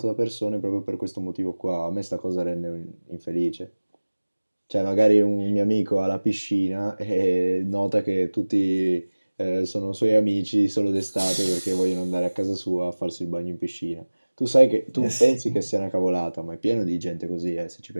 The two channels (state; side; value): inverted; both; correlation -1.00